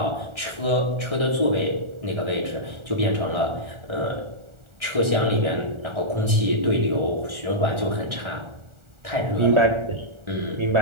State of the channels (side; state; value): left; late; 1.4 ms